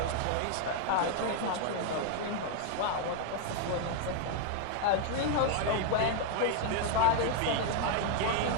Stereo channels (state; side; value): different; both; correlation 0.00